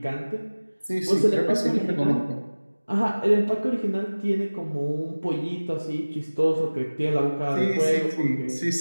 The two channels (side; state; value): both; inverted; correlation -1.00